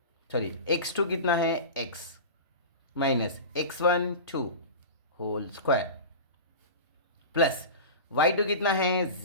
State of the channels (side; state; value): both; inverted; correlation -0.30